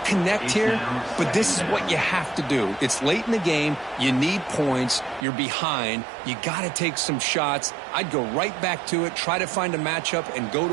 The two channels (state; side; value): drops out; left; at 5.2 s